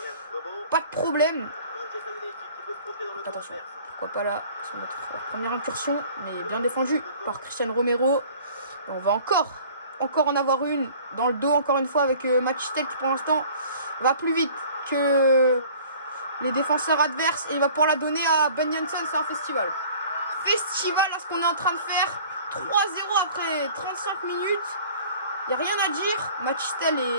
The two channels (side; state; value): both; inverted; correlation -0.48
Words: problème. Donc, attention, pourquoi pas là, sur notre première incursion. Mais bien défendu par Cristiano Romero. Et on va encore en avoir une dans le dos, encore une fois, avec Machistel qui pour l'instant va plus vite que les défenseurs adverses. Et il va pouvoir la donner à Ben Jensen. C'est un festival. Festival à ce qu'on est en train de faire. 3-0 après 35 minutes. Il n'y a rien à dire. Machistel